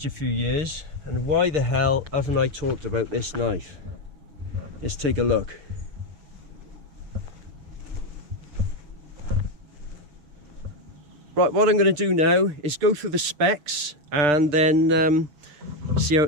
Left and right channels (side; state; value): left; late; 6.7 ms